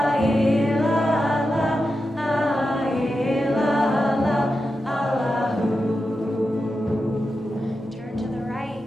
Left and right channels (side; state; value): both; normal; correlation 0.90